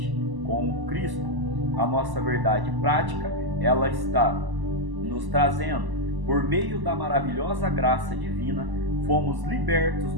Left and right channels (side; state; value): left; late; 1.0 ms